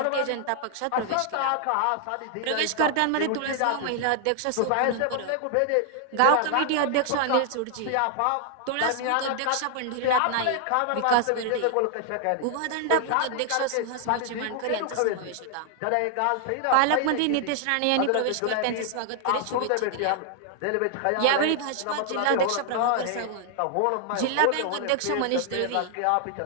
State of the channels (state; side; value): different; both; correlation 0.00